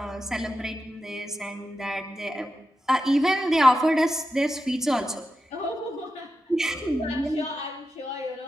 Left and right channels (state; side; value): normal; both; correlation 0.89